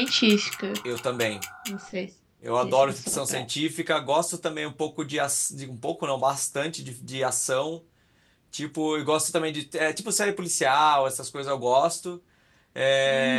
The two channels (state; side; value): identical; both; correlation 1.00